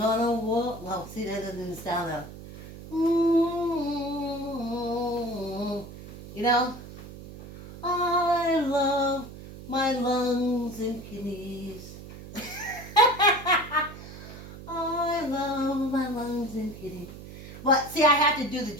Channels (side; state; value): right; noise; hum, 14 dB below the sound